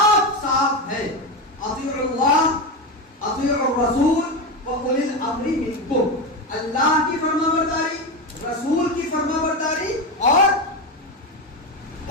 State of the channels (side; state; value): both; normal; correlation 0.16